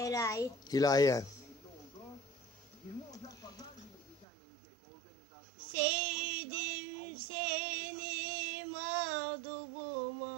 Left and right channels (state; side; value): drops out; left; at 4.2 s